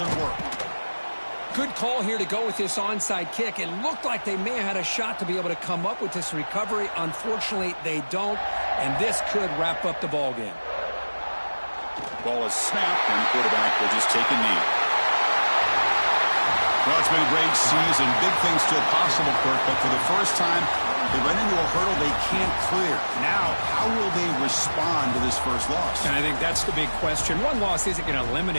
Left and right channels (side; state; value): both; inverted; correlation -1.00